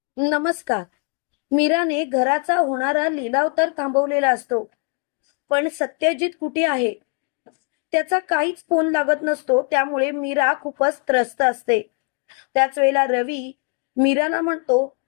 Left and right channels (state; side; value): quieter; right; 37.9 dB